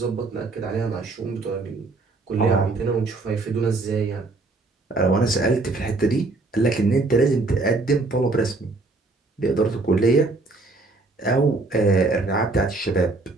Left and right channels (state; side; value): quieter; left; 3.4 dB